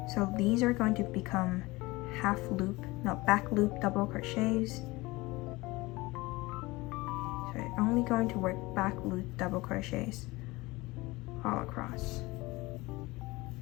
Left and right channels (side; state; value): right; quieter; 21.7 dB